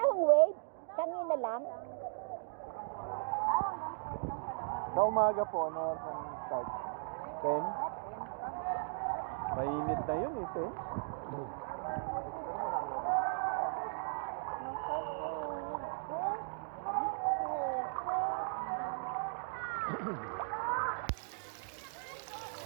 hong wave. Kanina lang. Sa umaga po, ano ang start? 10? Mainit na yun ito.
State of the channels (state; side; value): silent; left; digital silence